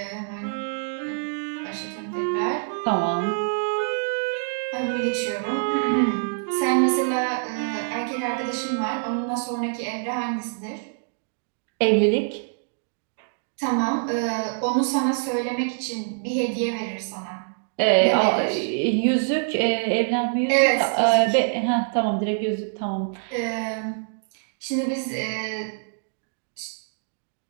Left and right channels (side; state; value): left; silent; digital silence